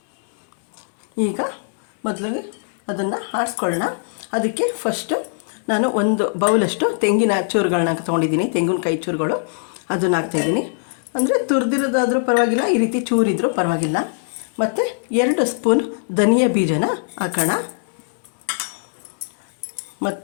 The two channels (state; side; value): silent; right; digital silence